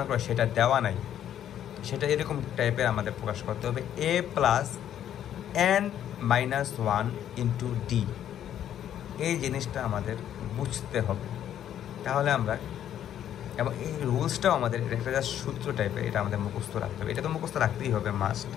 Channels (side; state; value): right; quieter; 10.5 dB